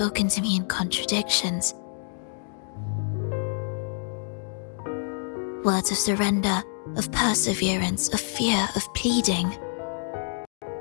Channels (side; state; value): right; silent; digital silence